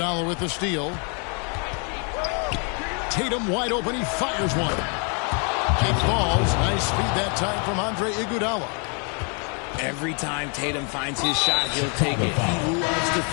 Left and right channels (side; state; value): right; quieter; 37.2 dB